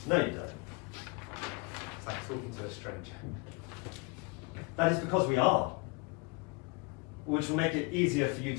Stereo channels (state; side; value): quieter; right; 30.4 dB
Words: No, you don't. It's like talking to a stranger. That is because we are. Which will make it easier for you